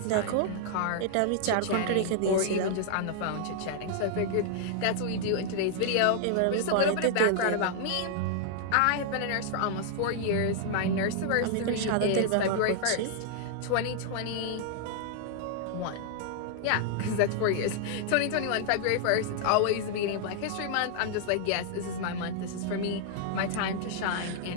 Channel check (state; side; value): different; both; correlation -0.01